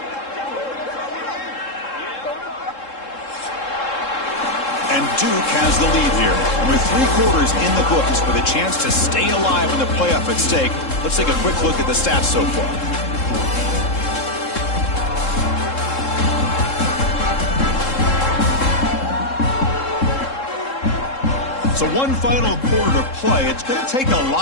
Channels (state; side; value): late; right; 3.7 ms